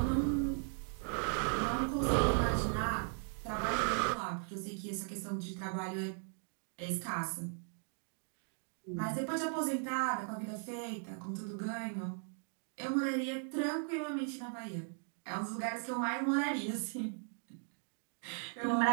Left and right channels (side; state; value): left; silent; 53 dB below the other